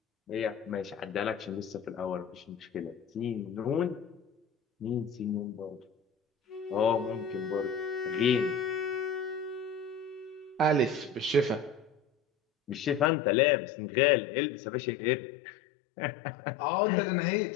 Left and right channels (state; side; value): drops out; right; at 13.1 s